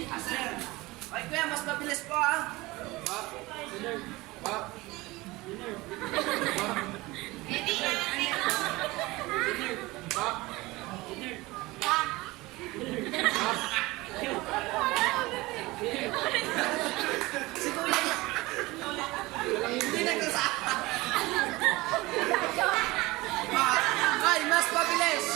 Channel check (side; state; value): left; quieter; 21.0 dB